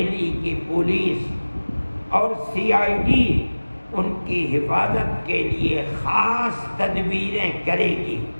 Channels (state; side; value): inverted; both; correlation -1.00